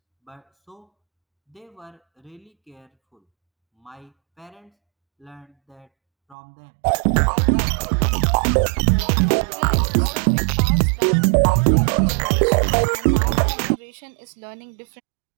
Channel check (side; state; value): left; drops out; at 6.4 s